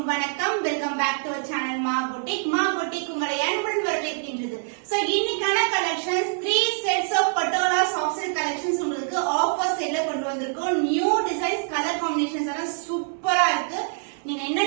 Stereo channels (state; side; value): silent; left; 62 dB below the other